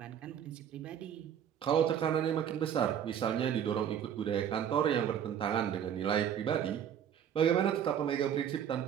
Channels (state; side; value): quieter; left; 9.2 dB